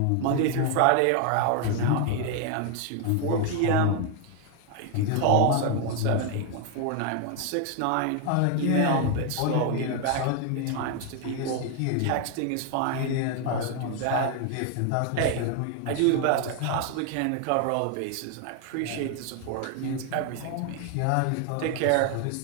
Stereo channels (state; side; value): different; both; correlation 0.00